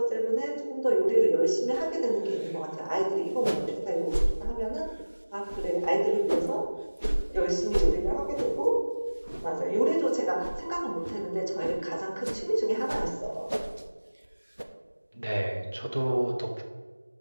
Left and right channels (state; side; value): inverted; both; correlation -1.00